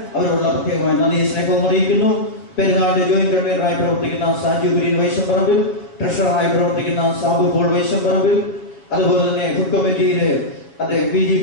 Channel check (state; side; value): late; right; 7.0 ms